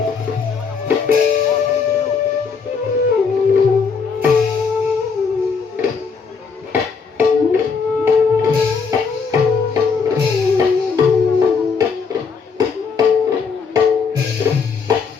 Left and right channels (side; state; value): right; quieter; 5.4 dB